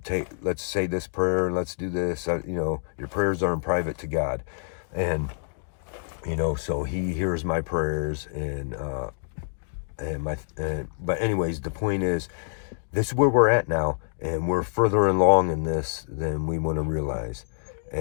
say this prayer and let's do this. Your prayers are in private to God, and so He hears my prayers. But anyways, the point is, this is where we're at now, and we're further along in this than we want to realize.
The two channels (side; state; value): right; silent; digital silence